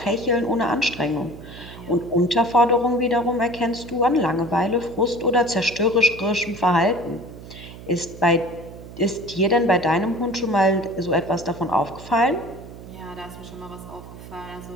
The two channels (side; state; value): right; noise; hum, 15 dB below the sound